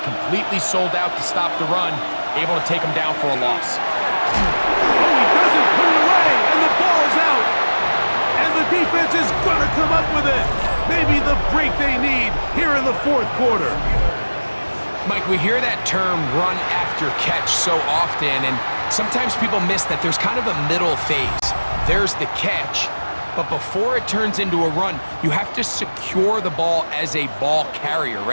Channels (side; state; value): both; inverted; correlation -1.00